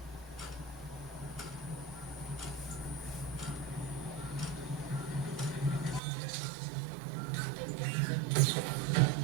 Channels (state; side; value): drops out; left; at 6.0 s